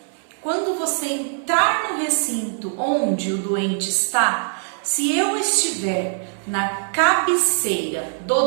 quando você entrar no recinto onde o doente está, se eu estiver na cabeceira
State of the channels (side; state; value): left; silent; 64 dB below the other